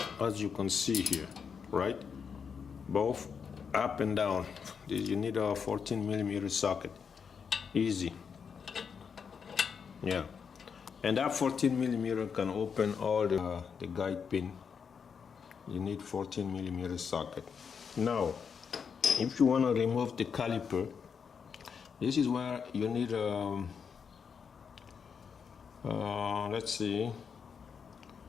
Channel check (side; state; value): right; quieter; 6.4 dB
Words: as you can see here, right? Both up and down. You need a 14 millimeter socket. Easy. Yeah. And that 14 millimeter can open all the guide pin. You need 14 millimeter socket. Now, if you want to remove the caliper, this is where you need let's see,